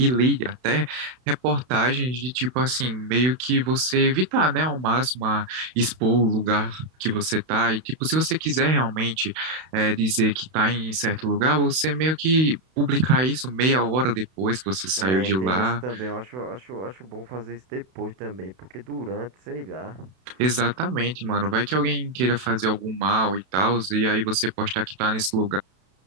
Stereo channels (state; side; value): late; left; 32 ms